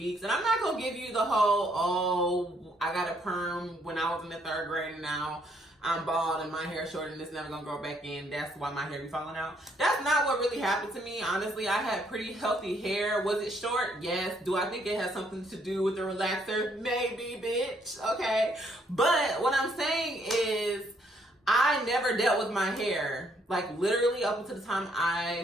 And I'm not gonna give you the whole, I got a perm when I was in the 3rd grade and now I'm bald and my hair short and it's never gonna grow back in. That's why my hair be falling out. That's not what really happened to me. Honestly, I had pretty healthy hair. Was it short? Yes. Do I think it has something to do with the relaxer? Maybe, bitch. Okay. But what I'm saying is, I never dealt with my hair, like literally up until the time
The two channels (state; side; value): normal; both; correlation 0.69